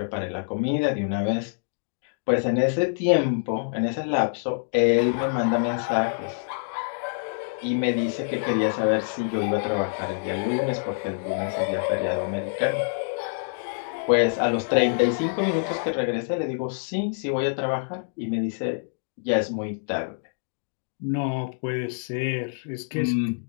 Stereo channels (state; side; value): silent; right; digital silence